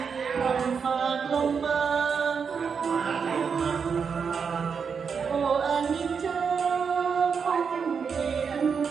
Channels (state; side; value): quieter; left; 6.1 dB